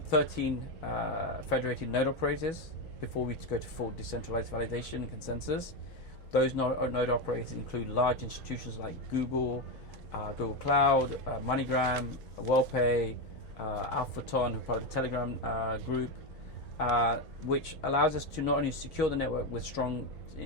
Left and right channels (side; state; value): both; normal; correlation 0.12